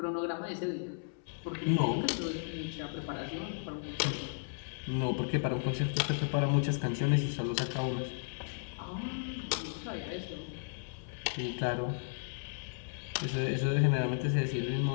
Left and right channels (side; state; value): right; silent; 55 dB below the other